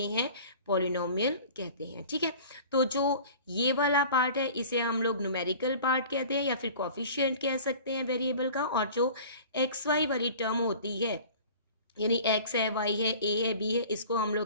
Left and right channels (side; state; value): both; inverted; correlation -0.43